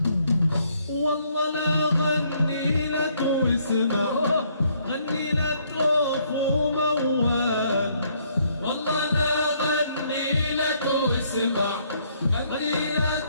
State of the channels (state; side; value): inverted; both; correlation -0.68